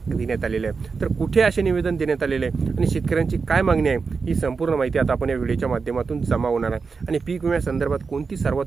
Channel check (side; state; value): left; quieter; 4.9 dB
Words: देण्यात आलेले आहे। तर कुठे असे निवेदन देण्यात आलेले आहे आणि शेतकऱ्यांची काय मागणी आहे ही संपूर्ण माहिती आता आपण या व्हिडिओच्या माध्यमातून जमा होणार आहे आणि पीक विम्यासंदर्भात कोणती